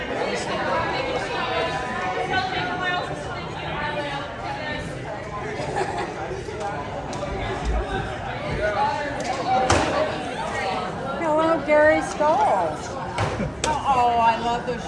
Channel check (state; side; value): identical; both; correlation 1.00